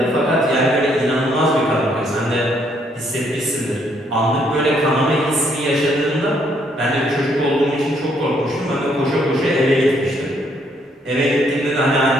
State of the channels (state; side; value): normal; both; correlation 0.70